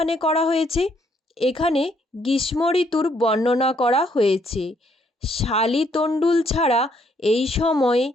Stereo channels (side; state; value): both; normal; correlation 0.70